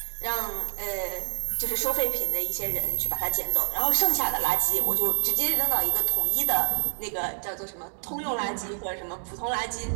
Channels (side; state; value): left; silent; digital silence